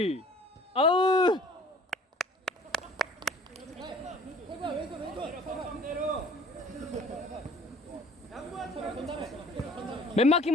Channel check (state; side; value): normal; both; correlation 0.50